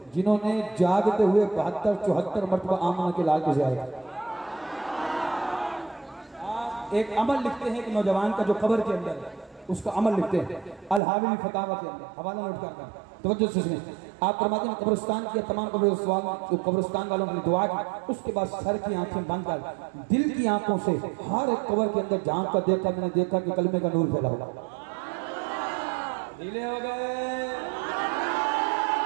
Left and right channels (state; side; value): drops out; left; at 11.0 s